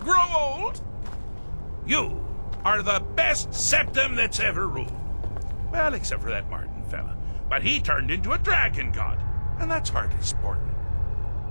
old? You are the best septum that's ever ruled. Well, except for that Martin fella. But he turned into a dragon god, and that's hardly sporting.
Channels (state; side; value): inverted; both; correlation -1.00